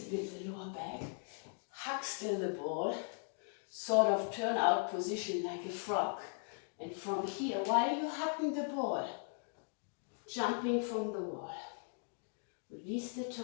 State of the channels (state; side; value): silent; right; 52 dB below the other